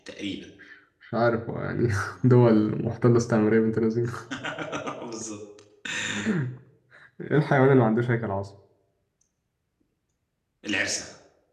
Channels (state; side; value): identical; both; correlation 1.00